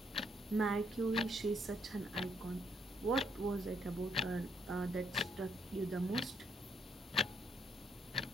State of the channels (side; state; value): both; normal; correlation 0.72